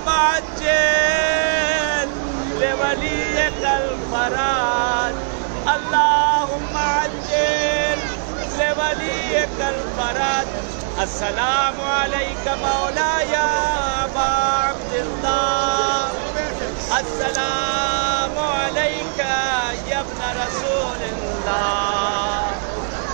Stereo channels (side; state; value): left; silent; digital silence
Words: عجل لولیک الفرج، اللہم عجل لولیک الفرج۔ السلام علیک مولاي ابا عبد الله، السلام عليك يا ابن رسول الله،